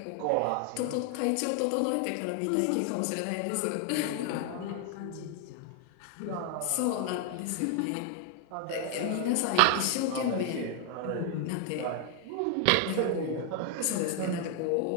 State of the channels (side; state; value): both; different; correlation 0.00